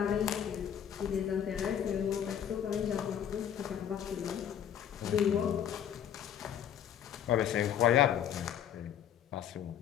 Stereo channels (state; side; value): quieter; right; 9.5 dB